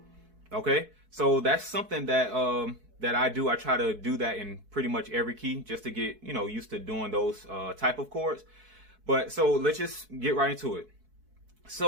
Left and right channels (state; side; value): late; left; 4.6 ms